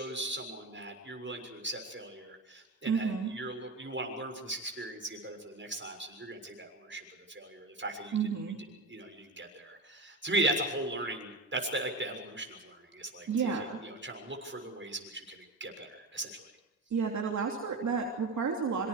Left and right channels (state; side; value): quieter; left; 3.1 dB